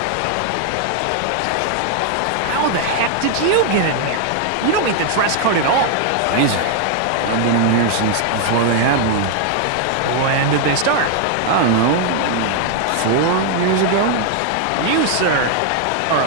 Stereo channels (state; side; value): different; both; correlation 0.00